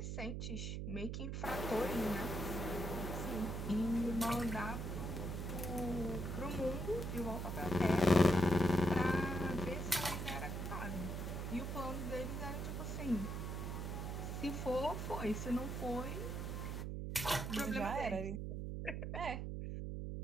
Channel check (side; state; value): right; noise; hum, 3 dB below the sound